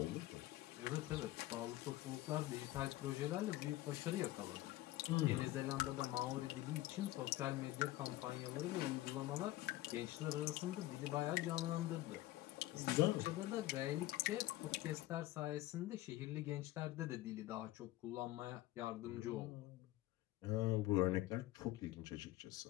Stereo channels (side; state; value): right; quieter; 16.3 dB